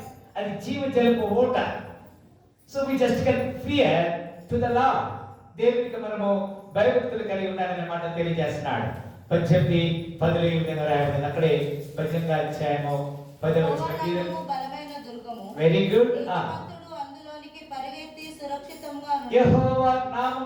అది జీవజలపు ఊట. So we just can fear to the Lord. దేవునికి మనము భయభక్తులు కలిగి ఉండాలనే మాట తెలియజేస్తున్నాడు. 18:10 ఈ విధంగా రాయబడింది. అక్కడే 18వ అధ్యాయము 10వ వచనం. Very good. యెహోవా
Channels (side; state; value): both; identical; correlation 1.00